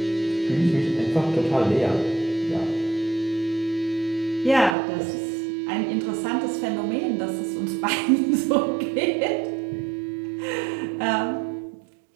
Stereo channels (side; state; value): left; drops out; at 4.8 s